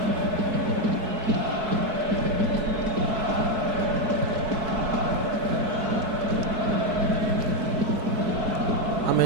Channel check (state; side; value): late; left; 4.6 ms